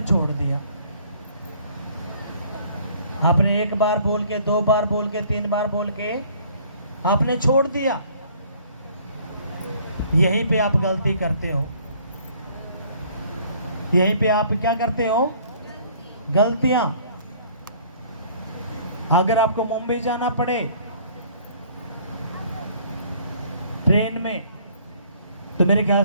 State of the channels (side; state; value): both; inverted; correlation -0.57